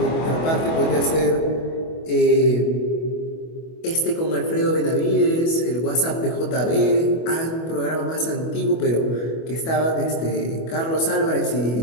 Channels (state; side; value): late; right; 25 ms